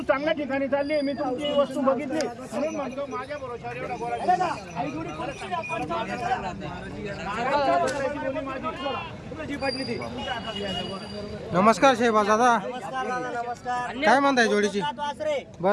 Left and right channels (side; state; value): both; identical; correlation 1.00